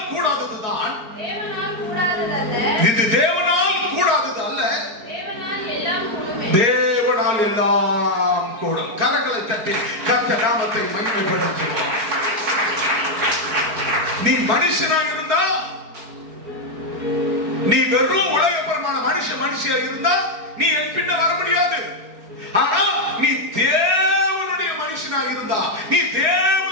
கூடாததுதான், இது தேவனால் கூடாதது அல்ல, தேவனால் எல்லாம் கூடும். கரங்களை தட்டி கர்த்தர் நாமத்தை மகிமைப்படுத்துவோம். நீ மனுஷனாக இருந்தா, நீ வெறும் உலகப்பரமான மனுஷியா இருந்தா நீ என் பின்ன வர முடியாது. ஆனா நீ தேவனுடைய மனுஷனாக இருந்தா, நீ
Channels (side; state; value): left; late; 4.7 ms